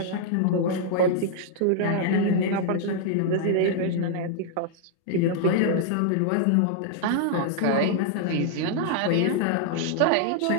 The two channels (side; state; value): both; different; correlation -0.01